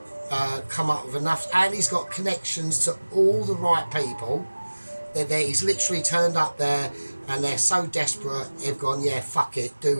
come up with enough? And he's got connections to all the right people. He's literally turned up there, and they're so desperate, they've gone, yeah, fuck it, do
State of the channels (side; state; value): both; inverted; correlation -1.00